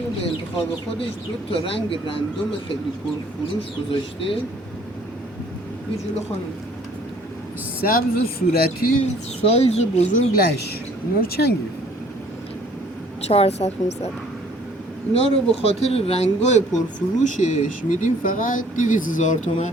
به انتخاب خودش 2 رنگ رندوم خیلی پرفروش گذاشته. یه جلو خانم سبز و صورتی سایز بزرگ لش، اینا رو چند گرفت؟ 400 500. اینا رو به خاطر رنگای پرفروشش میدیم فقط 200,000 تومان.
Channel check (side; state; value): both; normal; correlation 0.57